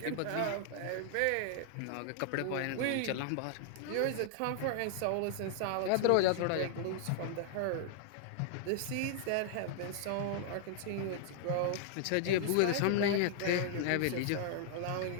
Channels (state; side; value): different; both; correlation -0.01